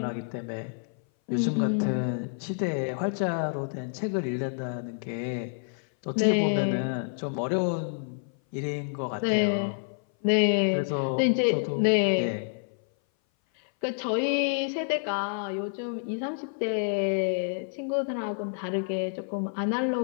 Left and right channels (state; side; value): silent; right; 57 dB below the other